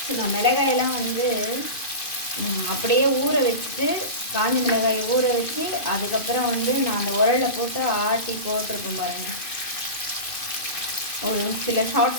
மிளகாயெல்லாம் வந்து அப்படியே ஊற வச்சுட்டு, காஞ்ச மிளகாயை ஊற வச்சு அதுக்கப்புறம் வந்து நான் அந்த உரலில் போட்டு ஆட்டி போட்டிருப்பேன் பாருங்கள். ஒரு சில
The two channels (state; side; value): late; right; 2.5 ms